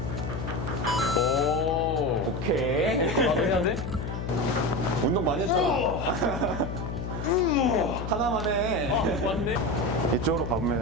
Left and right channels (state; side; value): noise; left; hum, 5 dB below the sound